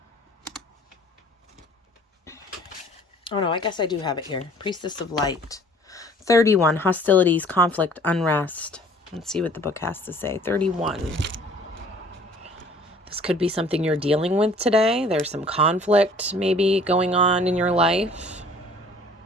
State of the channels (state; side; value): normal; both; correlation 0.53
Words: Oh no, I guess I do have it here. Priestess of Light. 31, hostilities, conflict, unrest. Let's see what the book has to say. 31. This could be something you're dealing with today. There's some conflict maybe going on in your life.